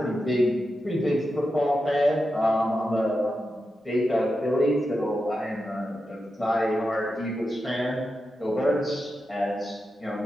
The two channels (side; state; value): both; normal; correlation 0.89